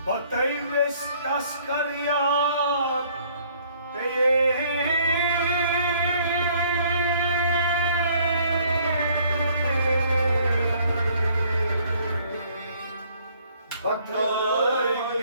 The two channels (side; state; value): both; inverted; correlation -0.62